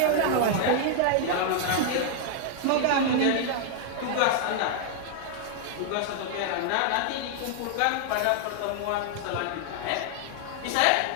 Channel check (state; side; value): different; both; correlation 0.00